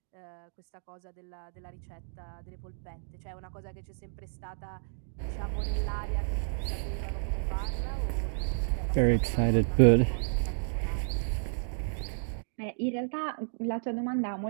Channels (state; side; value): silent; left; digital silence